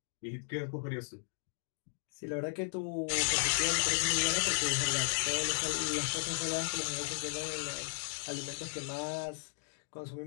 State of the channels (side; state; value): right; silent; digital silence